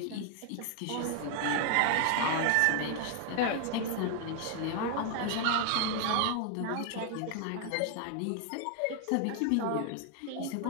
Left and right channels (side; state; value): both; different; correlation 0.00